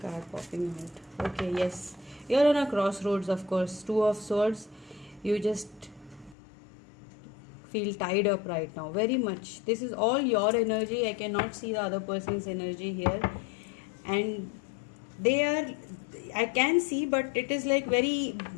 popping out. Okay, yes. You're on a crossroads, of course. Two of Swords. You just feel tied up right now. Very much. This is all your energy. I cannot see the other person's energy here. And I can see, but it is like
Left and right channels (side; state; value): right; drops out; at 6.4 s